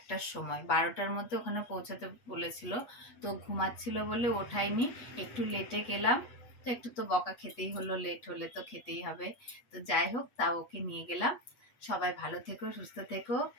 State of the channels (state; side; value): late; right; 8.3 ms